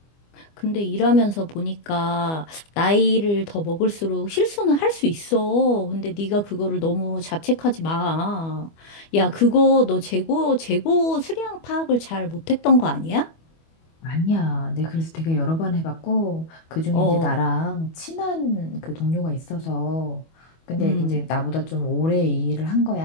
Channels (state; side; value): late; right; 25 ms